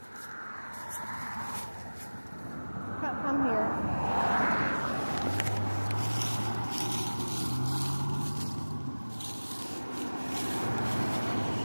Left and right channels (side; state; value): both; inverted; correlation -1.00